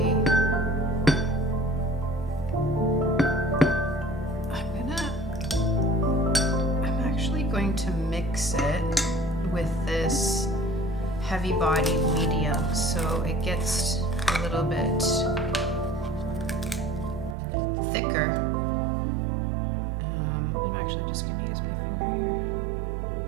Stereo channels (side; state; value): left; drops out; at 17.4 s